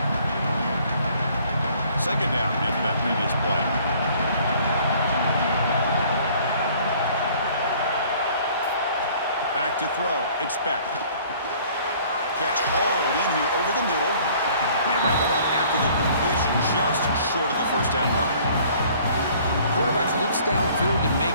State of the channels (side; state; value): both; inverted; correlation -0.56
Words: Second down after that previous play. Back to throw. It's Beck. Catch hauled in here over the middle. They wrap it up after the completion, just short of the first down marker. Quarterback looks downfield to